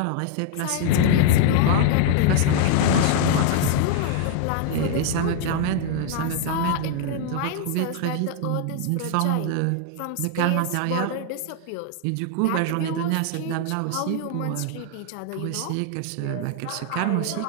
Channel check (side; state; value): both; different; correlation 0.00